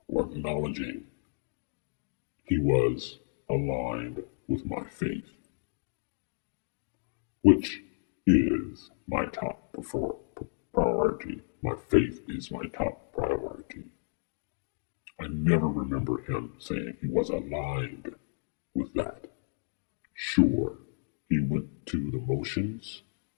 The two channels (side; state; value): right; silent; digital silence